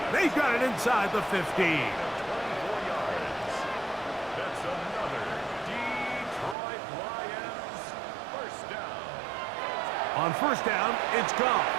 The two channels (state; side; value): drops out; left; at 6.6 s